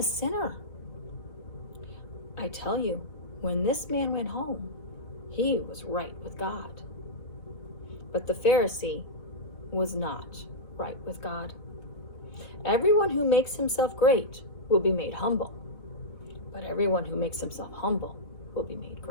sinner. I tell you, when this man went home, he was right with God. But the Pharisee was not right with God. Everyone who makes himself great will be made humble, but everyone who makes himself humble will be made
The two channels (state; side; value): late; right; 4.1 ms